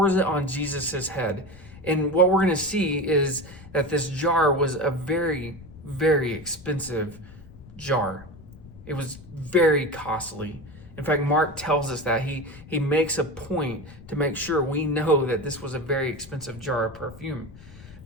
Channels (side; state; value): left; noise; rumble, 18 dB below the sound